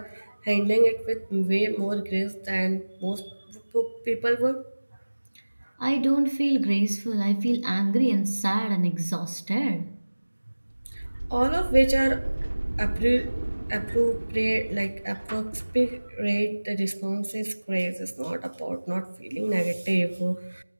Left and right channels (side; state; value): both; inverted; correlation -1.00